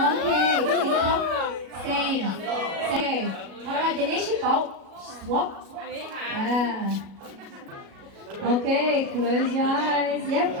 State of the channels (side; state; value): left; late; 37 ms